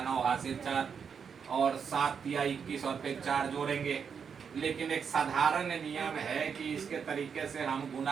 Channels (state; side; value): quieter; left; 6.7 dB